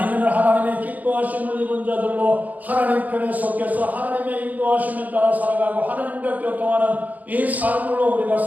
하나님의 기뻐하심을 입은 자들로 하나님 편에 속해서 하나님의 인도하심에 따라 살아가고 하나님과 교통하는 이 삶으로 우리가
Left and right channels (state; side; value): late; left; 0.079 ms